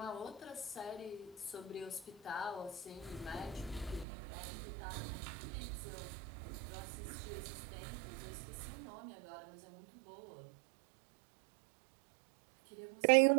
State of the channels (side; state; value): left; drops out; at 4.0 s